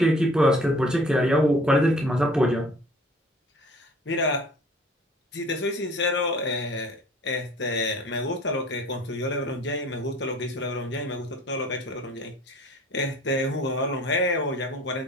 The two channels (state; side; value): normal; both; correlation 0.48